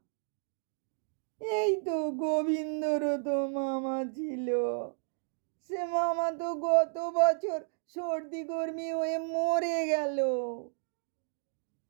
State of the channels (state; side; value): silent; left; digital silence